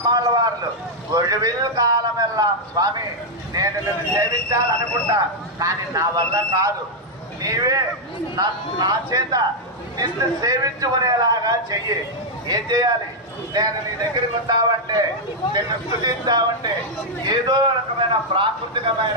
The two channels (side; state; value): both; normal; correlation -0.02